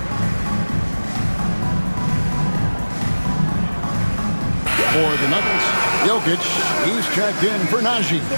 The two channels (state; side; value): inverted; both; correlation -1.00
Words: For the Nuggets, Jokic, he's checked in for Najee.